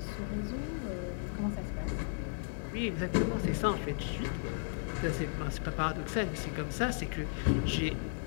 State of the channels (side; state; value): right; silent; digital silence